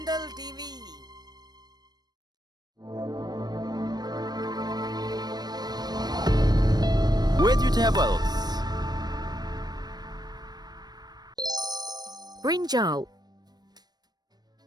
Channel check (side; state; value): left; late; 0.19 ms